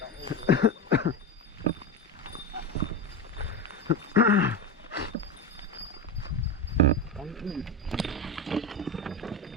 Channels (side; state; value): both; normal; correlation 0.20